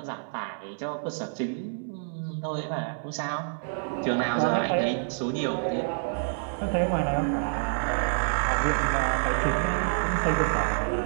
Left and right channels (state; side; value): silent; left; 60 dB below the other